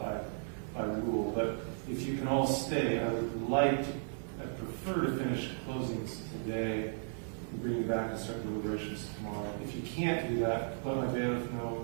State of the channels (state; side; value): silent; left; digital silence